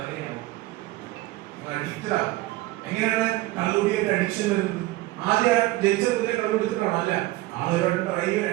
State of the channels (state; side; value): quieter; left; 18.2 dB